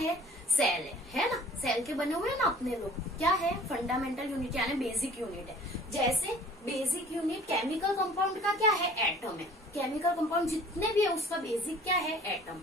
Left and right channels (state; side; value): normal; both; correlation 0.49